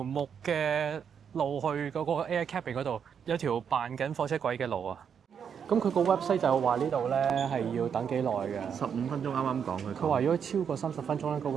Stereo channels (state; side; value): quieter; left; 7.4 dB